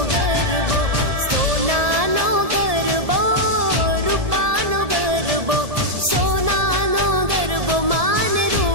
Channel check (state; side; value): late; left; 1.7 ms